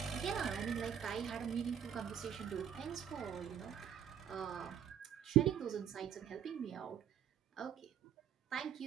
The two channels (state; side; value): quieter; left; 9.2 dB